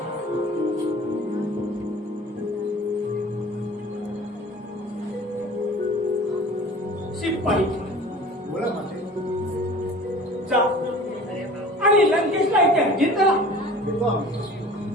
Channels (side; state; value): both; normal; correlation 0.43